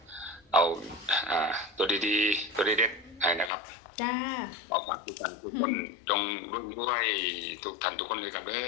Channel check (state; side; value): drops out; right; at 3.5 s